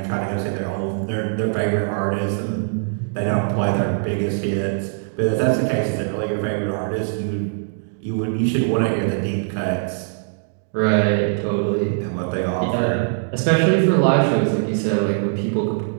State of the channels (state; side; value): silent; left; digital silence